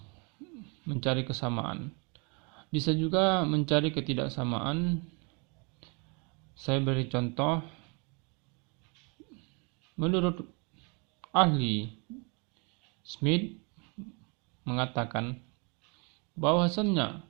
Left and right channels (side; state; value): left; quieter; 32.8 dB